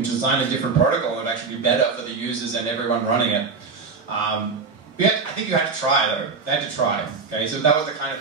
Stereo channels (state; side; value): quieter; left; 4.7 dB